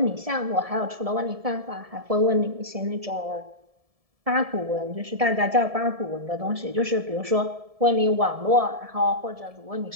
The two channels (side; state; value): left; late; 1.7 ms